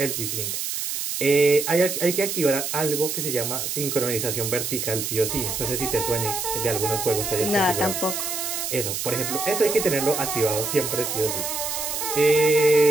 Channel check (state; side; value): noise; right; hiss, 3 dB below the sound